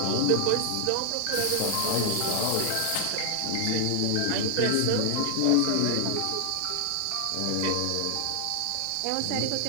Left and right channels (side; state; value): both; different; correlation 0.00